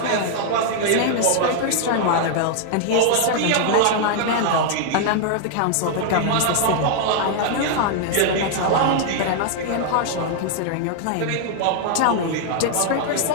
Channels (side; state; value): both; different; correlation 0.00